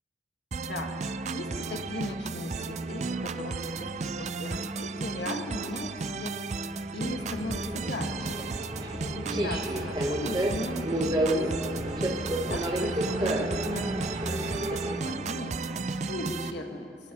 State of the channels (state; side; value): normal; both; correlation 0.59